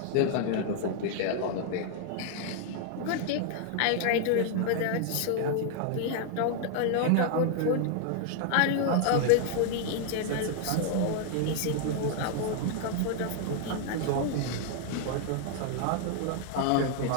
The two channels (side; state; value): both; different; correlation 0.00